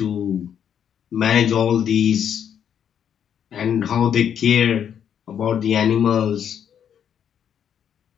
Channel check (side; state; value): right; quieter; 8.7 dB